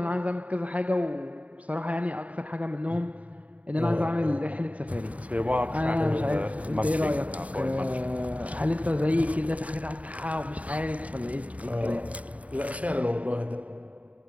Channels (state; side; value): late; left; 0.068 ms